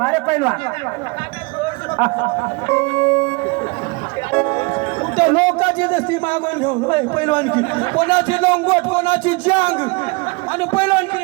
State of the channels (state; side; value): quieter; left; 28.3 dB